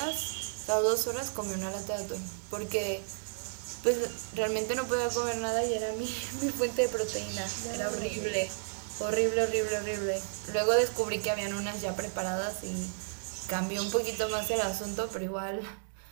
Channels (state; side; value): silent; left; digital silence